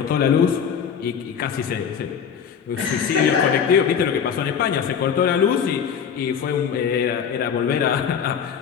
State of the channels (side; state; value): right; quieter; 7.5 dB